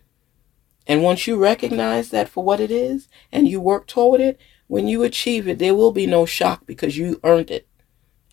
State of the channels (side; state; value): right; quieter; 13.4 dB